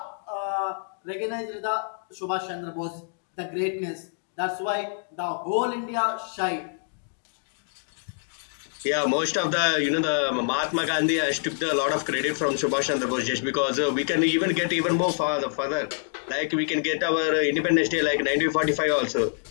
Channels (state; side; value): silent; right; digital silence